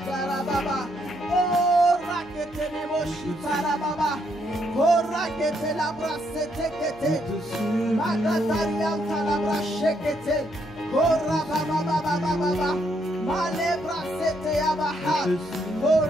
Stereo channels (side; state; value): right; noise; hum, 24 dB below the sound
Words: Oh, rakete ne moshitara baba. Oh, rakete la brasete kete. Magatarianta la brachekete. Oh, rababa baba baba. Male brasete yabaha. Oh,